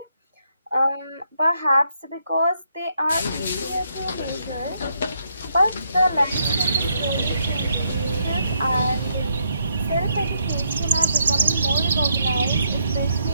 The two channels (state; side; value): inverted; both; correlation -0.76